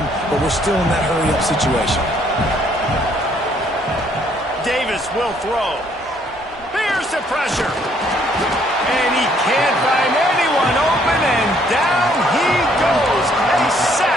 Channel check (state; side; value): normal; both; correlation 0.65